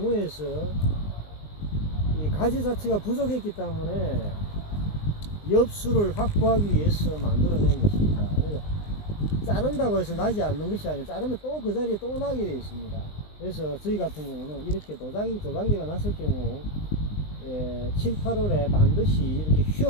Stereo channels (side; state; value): right; late; 20 ms